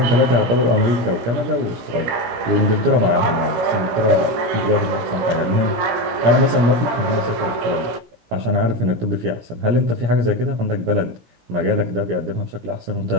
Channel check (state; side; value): late; left; 18 ms